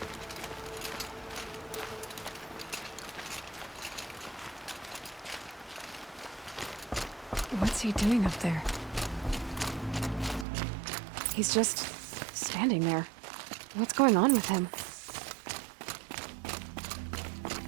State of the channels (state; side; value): drops out; left; at 10.5 s